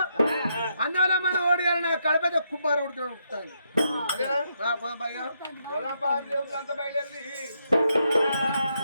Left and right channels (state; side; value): inverted; both; correlation -0.78